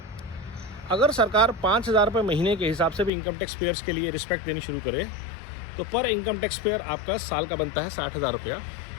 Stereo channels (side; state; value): right; drops out; at 3.1 s